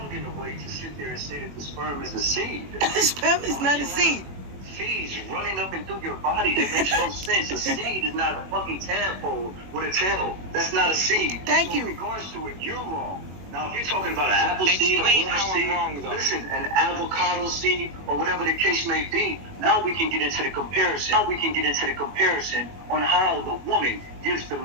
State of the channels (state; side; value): late; left; 21 ms